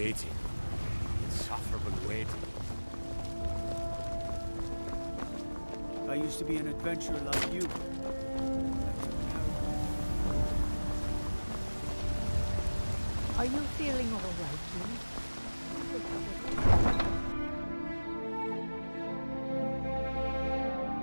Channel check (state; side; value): inverted; both; correlation -1.00